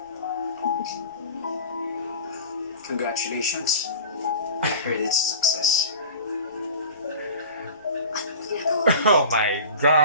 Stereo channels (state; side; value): inverted; both; correlation -0.38